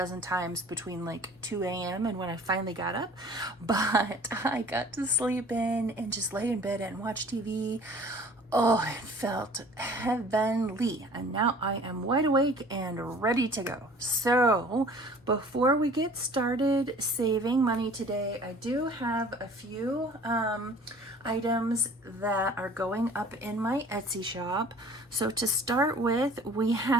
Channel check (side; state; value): both; normal; correlation 0.49